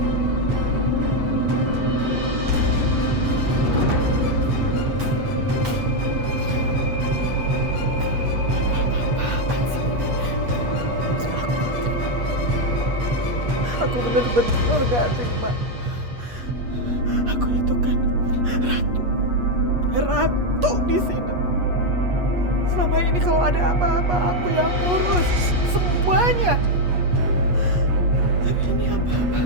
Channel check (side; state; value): left; late; 8.3 ms